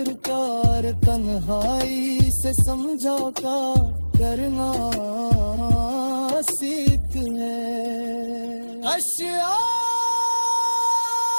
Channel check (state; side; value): inverted; both; correlation -1.00